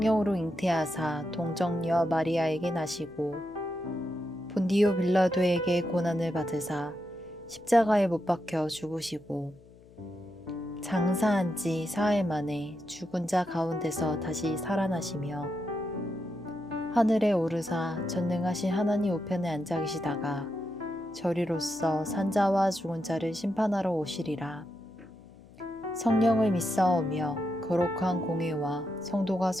잉태하사 동정녀 마리아에게 나시고 본디오 빌라도에게 고난을 받으사 십자가에 못 박혀 죽으시고 장사한 지 사흘 만에 죽은 자 가운데서 다시 살아나시며 하늘에 오르사 전능하신 하나님 우편에 앉아 계시다가 저리로서 산자와 죽은 자를 심판하러 오시리라. 성령을 믿사오며 거룩한 공회와 성도가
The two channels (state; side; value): noise; left; hum, 24 dB below the sound